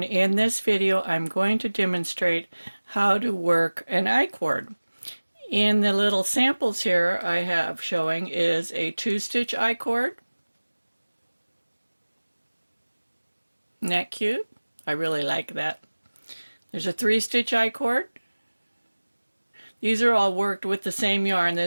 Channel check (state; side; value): inverted; both; correlation -1.00